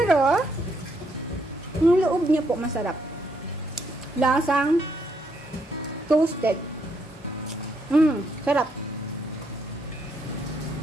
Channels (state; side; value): normal; both; correlation 0.74